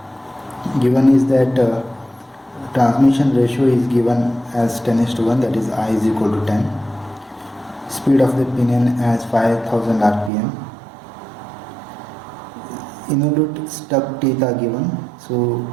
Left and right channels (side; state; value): left; drops out; at 10.3 s